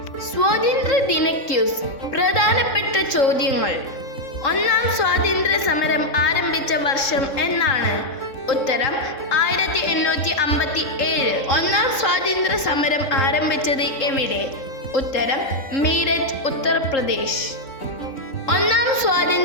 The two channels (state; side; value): late; right; 3.6 ms